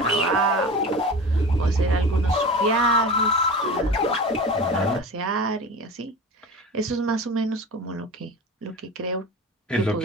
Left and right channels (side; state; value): both; normal; correlation 0.33